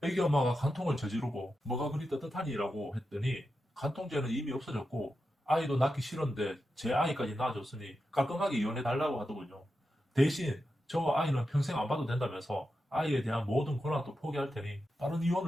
애기 엄마가 간통을 저지르고 뭐가 그리 떳떳하니라고 했더니 간통죄는 이미 없어졌고 아이도 낳기 싫은데 제 아이까지 낳아줬으니 깔끔하게 이혼해달라고 하더군요. 대신 저 아이는 평생 안 봐도 된다면서 아이에 대한 모든 권한도 포기할 테니 빠른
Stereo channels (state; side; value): normal; both; correlation 0.89